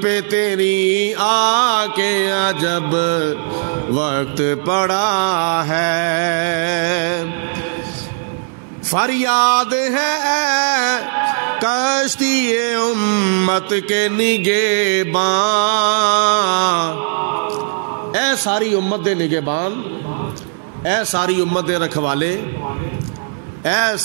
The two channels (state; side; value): silent; left; 68 dB below the other